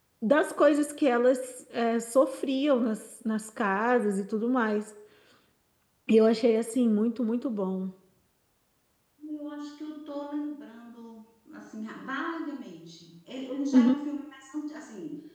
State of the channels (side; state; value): both; identical; correlation 1.00